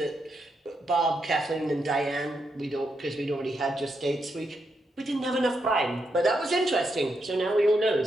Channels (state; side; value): normal; both; correlation 0.82